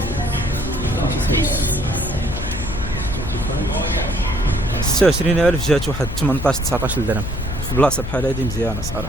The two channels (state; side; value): noise; left; hum, 7 dB below the sound